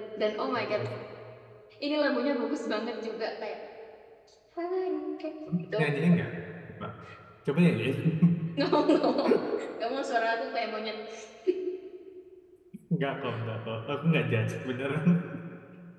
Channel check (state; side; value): identical; both; correlation 1.00